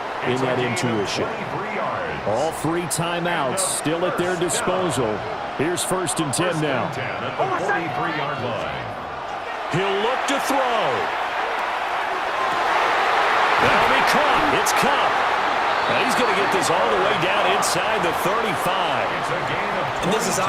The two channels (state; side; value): identical; both; correlation 1.00